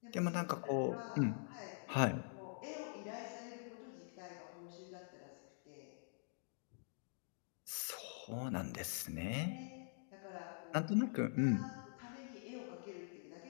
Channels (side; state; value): right; silent; digital silence